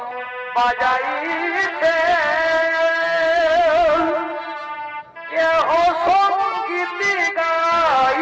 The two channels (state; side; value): identical; both; correlation 1.00